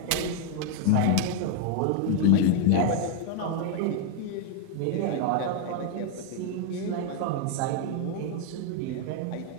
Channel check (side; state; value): both; different; correlation 0.00